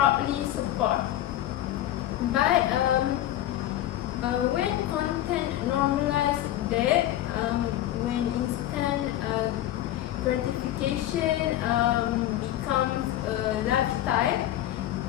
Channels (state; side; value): quieter; right; 13.4 dB